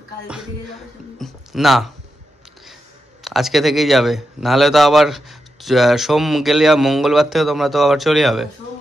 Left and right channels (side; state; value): both; normal; correlation 0.87